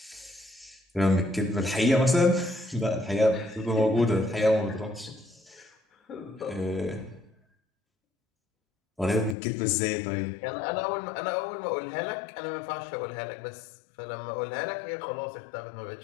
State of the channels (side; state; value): right; drops out; at 9.3 s